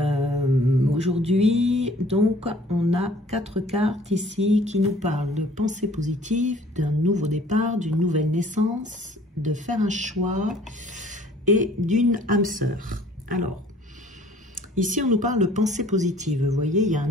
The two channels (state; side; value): normal; both; correlation 0.54